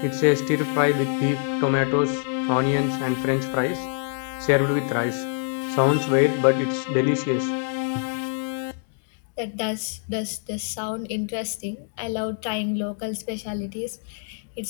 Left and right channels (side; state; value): right; silent; 62 dB below the other